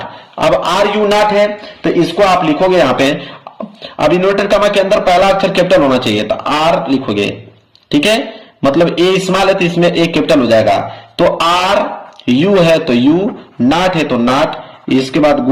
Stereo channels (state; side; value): identical; both; correlation 1.00